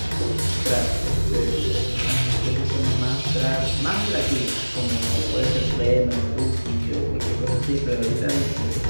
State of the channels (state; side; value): inverted; both; correlation -1.00